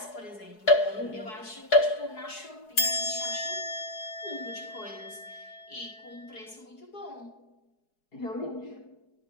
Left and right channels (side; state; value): right; late; 4.7 ms